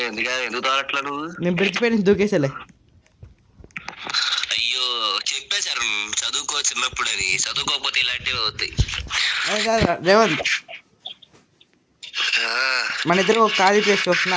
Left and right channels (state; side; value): identical; both; correlation 1.00